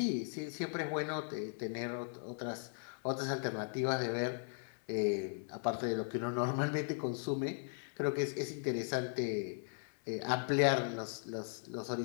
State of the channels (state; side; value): silent; right; 52 dB below the other